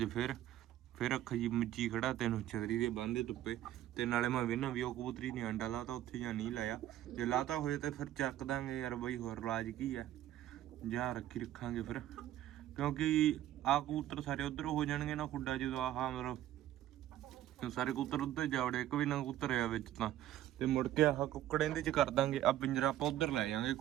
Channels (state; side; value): quieter; left; 13.0 dB